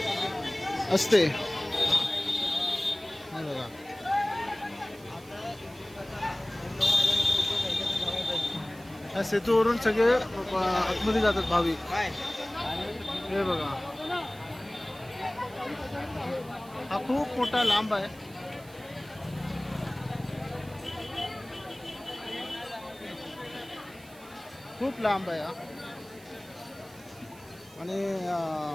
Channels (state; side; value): noise; right; hiss, 23 dB below the sound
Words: असते. बघा, या सेतूवरून सगळे आतमध्ये जातात भाविक. हे बघा, हा खूप मोठा लांब आहे. खूप लांब आहे हा. आणि